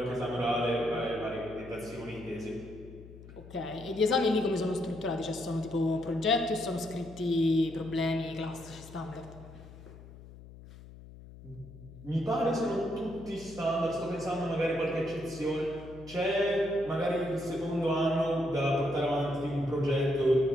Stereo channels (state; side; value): noise; left; hum, 17 dB below the sound